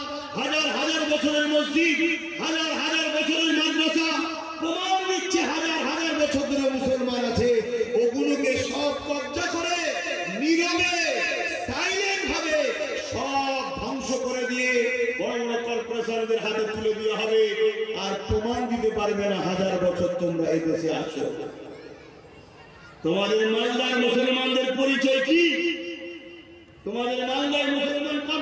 হাজার হাজার বছরের মসজিদ, হাজার হাজার বছরের মাদ্রাসা প্রমাণ দিচ্ছে হাজার হাজার বছর ধরে মুসলমান আছে। ওগুলোকে সব কবজা করে নীরবে সাইলেন্ট ভাবে সব ধ্বংস করে দিয়ে বড় বড় কর্পোরেশনদের হাতে তুলে দেওয়া হবে। আর প্রমাণ দিতে পারবে না 1000 বছর তোমরা এই দেশে আছো। তোমাদের মালদার মুসলমানদের পরিচয় কি? তোমাদের মালদার মুসলমান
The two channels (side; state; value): both; identical; correlation 1.00